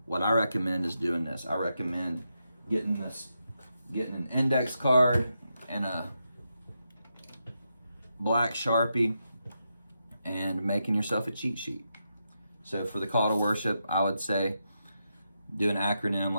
what I recommend is doing this. I recommend getting an index card and a black Sharpie and making yourself a cheat sheet. So for the call to worship, I would say do an acronym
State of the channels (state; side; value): inverted; both; correlation -0.85